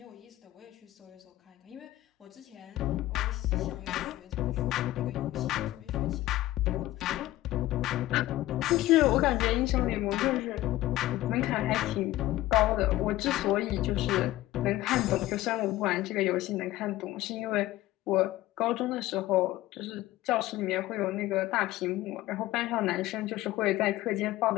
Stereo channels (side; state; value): right; quieter; 16.2 dB